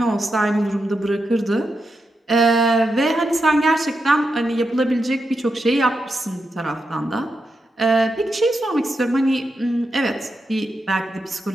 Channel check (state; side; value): normal; both; correlation 0.86